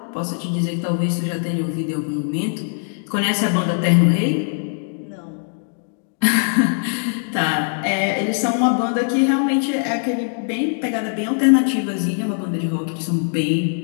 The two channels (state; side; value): silent; right; 65 dB below the other